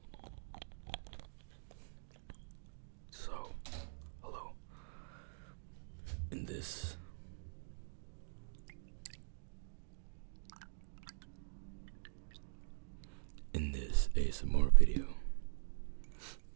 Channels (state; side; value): silent; left; digital silence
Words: So, hello. In this ASMR video,